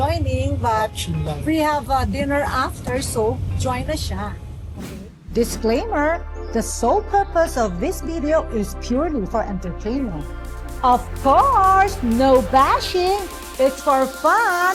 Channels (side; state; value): both; identical; correlation 1.00